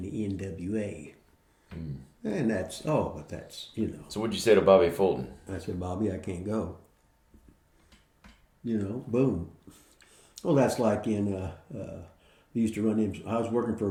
in the NWA. Mm. And that's. So what'd you say to Bobby Fulton? I said, Bobby, I can't go. Boom. Well, that's like in, we used to run in, I was working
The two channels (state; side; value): identical; both; correlation 1.00